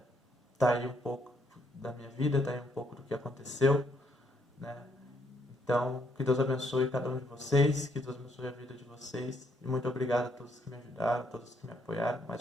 tá aí um pouco da minha vida, tá aí um pouco do que aconteceu, né? Então, que Deus abençoe cada um de vocês, que Deus abençoe a vida de vocês. E muito obrigado a todos que me ajudaram, a todos que me apoiaram. Mais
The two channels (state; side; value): normal; both; correlation 0.72